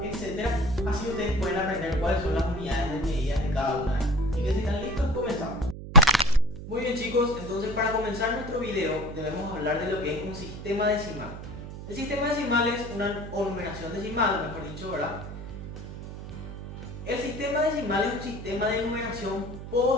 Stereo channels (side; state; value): right; noise; hum, 10 dB below the sound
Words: etc. Así ustedes pueden aprender cuáles son las unidades de medida de cada una. Así que si están listos, comenzamos. Muy bien chicos, entonces para comenzar nuestro video debemos hablar de lo que es un sistema decimal. El sistema decimal es una numeración decimal, mejor dicho, ¿verdad? El sistema decimal es un sistema de numeración